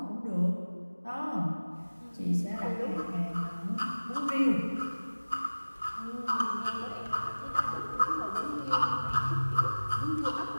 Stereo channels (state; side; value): inverted; both; correlation -1.00